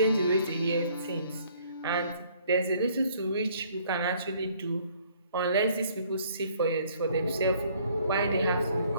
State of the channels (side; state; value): both; inverted; correlation -0.61